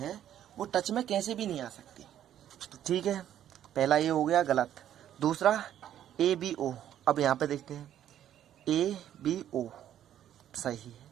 वो टच में कैसे भी नहीं आ सकती। तो ठीक है, पहला ये हो गया गलत। दूसरा ए बी ओ, अब यहाँ पे देखते हैं ए बी ओ सही है,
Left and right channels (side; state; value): left; quieter; 11.0 dB